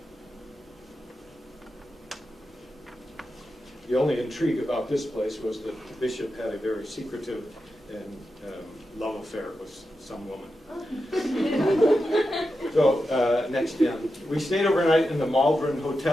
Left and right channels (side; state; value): both; normal; correlation 0.89